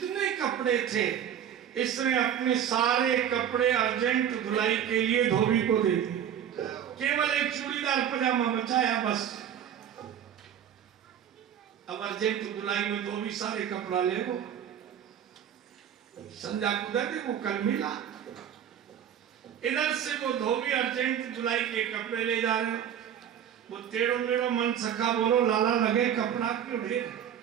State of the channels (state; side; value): quieter; left; 9.3 dB